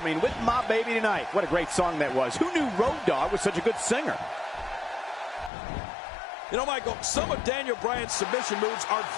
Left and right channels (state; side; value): drops out; right; at 5.5 s